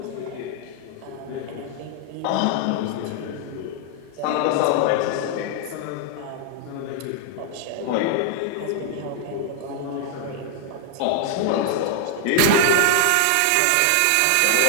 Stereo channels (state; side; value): different; both; correlation 0.00